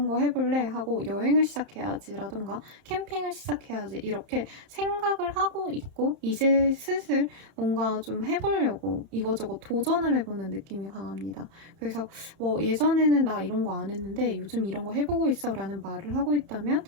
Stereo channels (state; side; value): late; left; 31 ms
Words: 거 해볼래 하고 여행을 시작해야지 라던가 캠핑을 시작해야지 이렇게 생각을 하고 있고 이제 슬슬 뭔가 좀 해보려고 이거저거 도전을 해보는 느낌이 강합니다. 그래서 뭐 예전에는 나 이런 거 안 했는데 요즘 이런 거 해보고 있어 라는 말을 하고 있다면